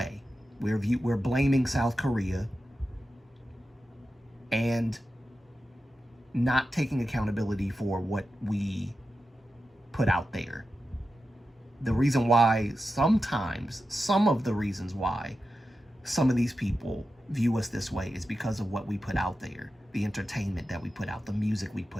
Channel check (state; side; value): normal; both; correlation 0.91